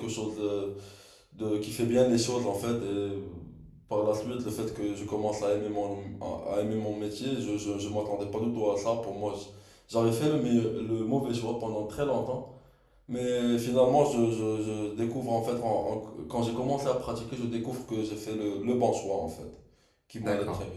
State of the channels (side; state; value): both; identical; correlation 1.00